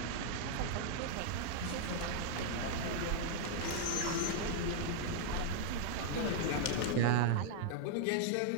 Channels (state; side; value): different; both; correlation -0.01